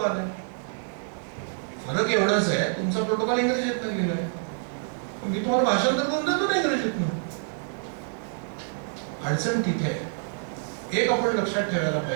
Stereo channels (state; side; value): silent; left; digital silence